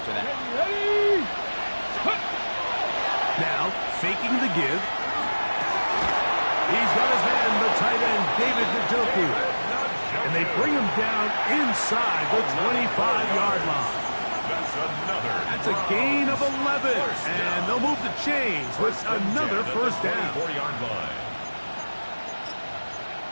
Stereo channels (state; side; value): inverted; both; correlation -1.00